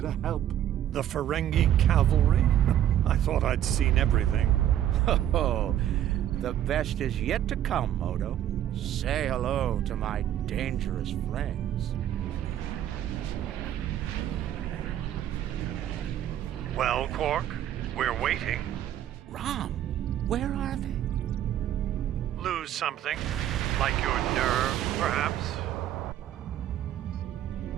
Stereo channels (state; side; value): quieter; left; 11.4 dB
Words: help. The Ferengi cavalry? I thought I'd seen everything. Oh, the best is yet to come, Odo. Say hello to my dangerous friends. Well, Quark? We're waiting. Rom, where are they? Lose something? Like your nerve, perhaps?